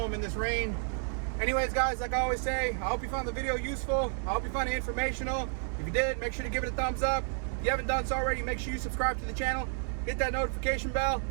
in this rain. Anyways, guys, like I always say, I hope you found the video useful. I hope you found it informational. If you did, make sure to give it a thumbs up. If you haven't done so already, make sure you subscribe to the channel, hit that notification bell,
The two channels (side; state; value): left; silent; 57 dB below the other